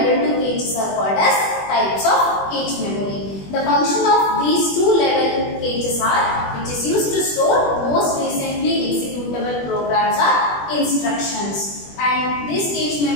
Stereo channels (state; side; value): late; right; 21 ms